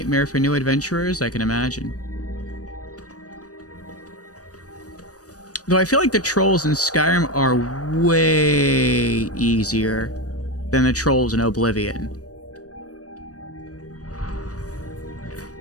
for new adventurers, I can imagine. Though I feel like the trolls in Skyrim are way easier than the trolls in Oblivion.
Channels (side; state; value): right; late; 0.67 ms